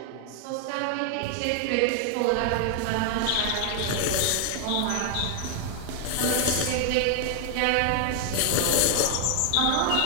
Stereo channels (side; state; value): both; different; correlation 0.00